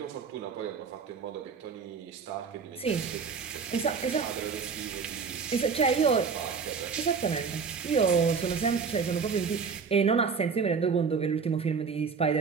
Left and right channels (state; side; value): quieter; left; 5.6 dB